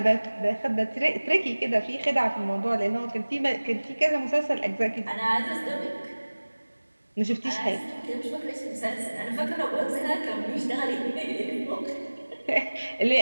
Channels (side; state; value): both; inverted; correlation -1.00